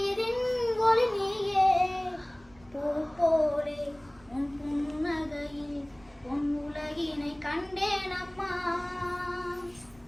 ஒளி நீயே பூ போலே உன் புன்னகையில் பொன் உலகினை கண்டேன் அம்மா.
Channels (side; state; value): right; noise; rumble, 27 dB below the sound